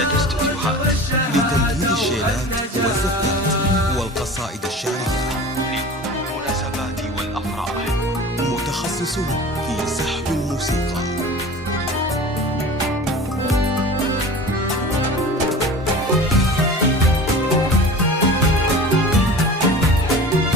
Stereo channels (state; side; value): normal; both; correlation 0.37